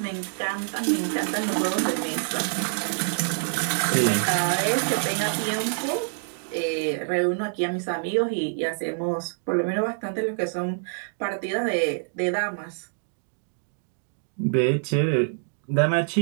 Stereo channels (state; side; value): silent; left; digital silence